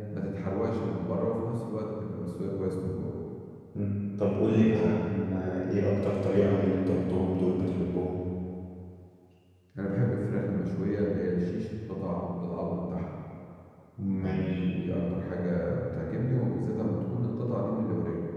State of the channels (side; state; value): both; identical; correlation 1.00